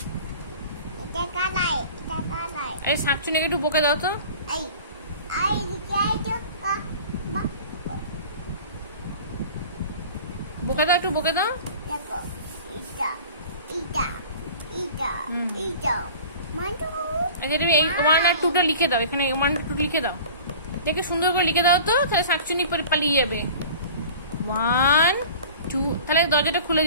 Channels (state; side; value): inverted; both; correlation -0.42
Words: এই শাকচুন্নিকে একটু বকে দাও তো। বকে দাও, একটু বকে দাও। এই 1 আর 2টা লিখে দাও, এখানে 1 2 লিখে দাও। দেখে সুন্দর করে লিখে দাও তো, তাহলে শাকচুন্নি পালিয়ে যাবে। 1 2, তাহলে দরজাটা খুলে